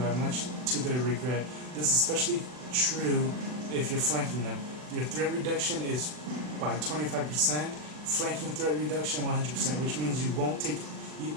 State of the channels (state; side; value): late; left; 40 ms